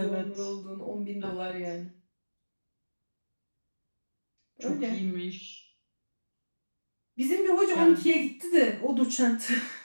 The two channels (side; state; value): both; inverted; correlation -1.00